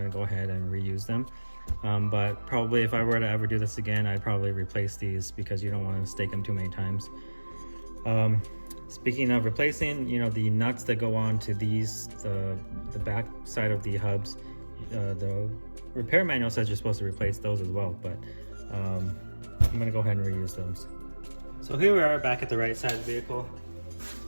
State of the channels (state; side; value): inverted; both; correlation -1.00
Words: to go ahead and reuse them. But probably if I were to ever do this again, I'd probably replace these because you don't want to stake them too many times. Speaking of replacing, you know, the nuts that go on to these, the back side of the hubs, the repair manual says you're supposed to replace those as well, but I'm gonna go ahead and reuse those. So here we are back at the right side of the vehicle.